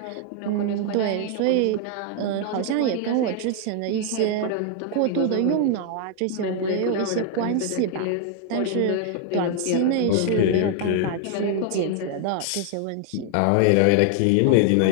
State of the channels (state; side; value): different; both; correlation 0.00